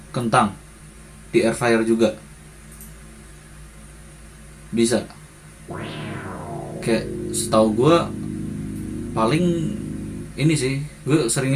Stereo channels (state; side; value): identical; both; correlation 1.00